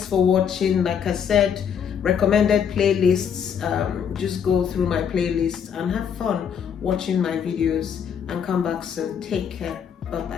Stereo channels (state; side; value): quieter; right; 7.7 dB